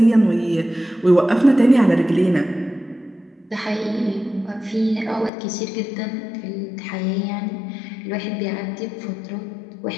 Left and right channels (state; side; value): drops out; right; at 5.3 s